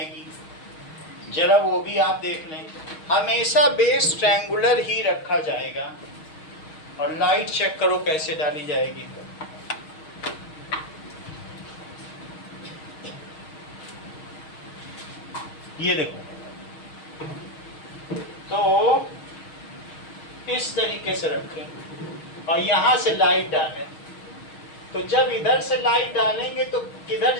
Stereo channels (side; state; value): right; late; 6.4 ms